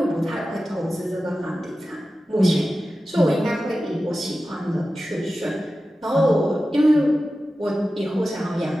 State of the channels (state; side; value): normal; both; correlation 0.94